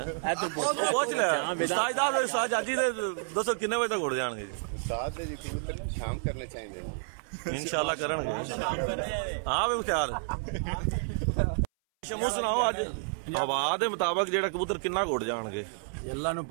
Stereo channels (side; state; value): left; silent; 58 dB below the other